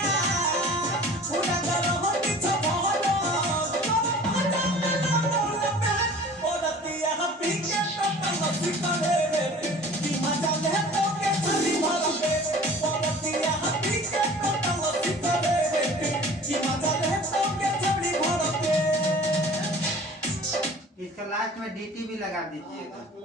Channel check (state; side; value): normal; both; correlation 0.45